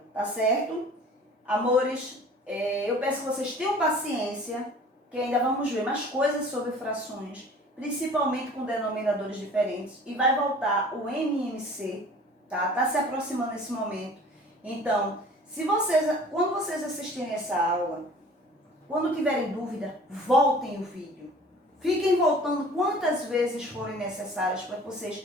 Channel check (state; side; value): normal; both; correlation 0.47